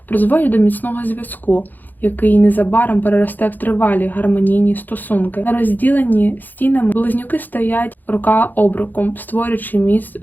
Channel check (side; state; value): right; late; 0.086 ms